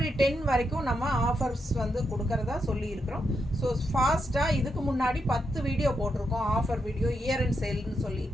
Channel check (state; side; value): normal; both; correlation 0.83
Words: 10 வரைக்கும் நம்ம ஆஃபர்ஸ் வந்து கொடுக்கறதா சொல்லியிருக்கிறோம். ஸோ ஃபாஸ்ட்டாக இதுக்கு முன்னாடி 10 வீடியோ போட்டிருக்கோம், ஆஃபர் வீடியோ, இயர் அண்ட் சேல்னு சொல்லி